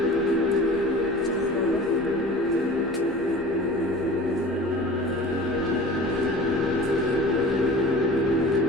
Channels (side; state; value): both; normal; correlation 0.40